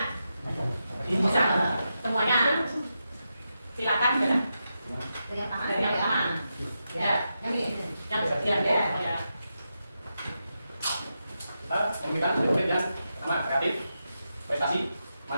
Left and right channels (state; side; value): inverted; both; correlation -0.87